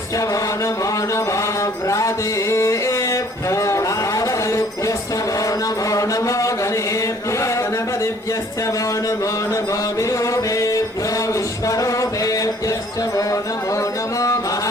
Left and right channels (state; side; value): normal; both; correlation 0.57